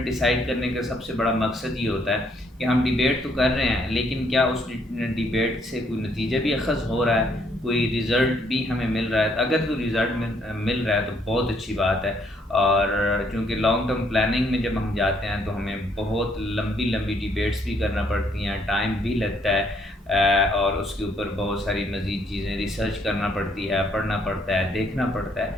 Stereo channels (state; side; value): normal; both; correlation 0.69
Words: ڈیسائیڈ کرنے کا سب سے بڑا مقصد یہ ہوتا ہے کہ ہم ڈیبیٹ تو کر رہے ہیں لیکن کیا اس ڈیبیٹ سے کوئی نتیجہ بھی اخذ ہو رہا ہے، کوئی ریزلٹ بھی ہمیں مل رہا ہے۔ اگر کوئی ریزلٹ مل رہا ہے تو بہت اچھی بات ہے، اور چونکہ لانگ ٹرم پلاننگ میں جب ہم جاتے ہیں تو ہمیں بہت لمبی ڈیبیٹس بھی کرنا پڑتی ہیں، ٹائم بھی لگتا ہے، اور اس کے اوپر بہت ساری مزید چیزیں ریسرچ کرنا پڑتی ہے، پڑھنا پڑتا ہے، دیکھنا پڑتا